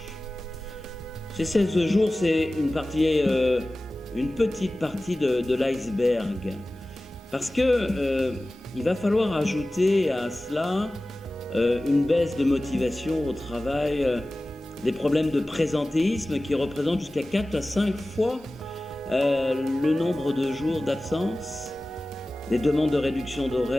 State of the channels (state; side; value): normal; both; correlation 0.97